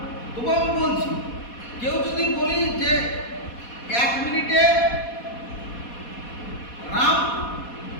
তবু আমি বলছি কেউ যদি বলি যে 1 মিনিটে রাম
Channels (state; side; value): late; right; 4.2 ms